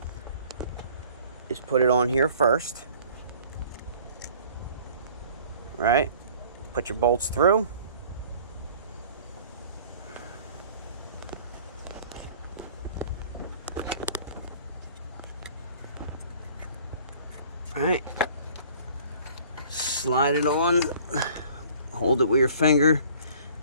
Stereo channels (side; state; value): both; inverted; correlation -0.51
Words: is put it on here first, right? Put your bolts through. All right. Slide it on. hold it with your finger.